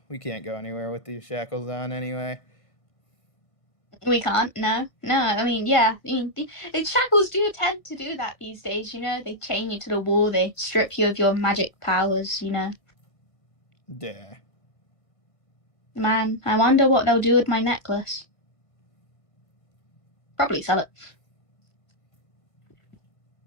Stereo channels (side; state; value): right; late; 1.6 ms